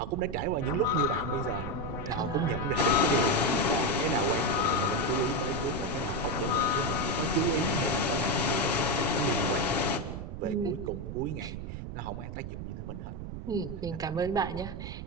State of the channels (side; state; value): right; noise; rumble, 7 dB below the sound